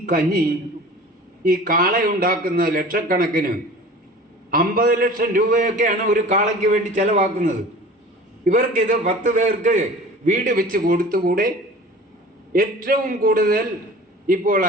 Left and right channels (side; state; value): both; normal; correlation 0.41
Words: കഞ്ഞി, ഈ കാളയുണ്ടാക്കുന്ന ലക്ഷക്കണക്കിന് 50 ലക്ഷം രൂപയൊക്കെയാണ് ഒരു കാളയ്ക്ക് വേണ്ടി ചെലവാക്കുന്നത്. ഇവർക്കിത് 10 പേർക്ക് വീട് വെച്ച് കൊടുത്തുകൂടെ? ഏറ്റവും കൂടുതൽ ഇപ്പോൾ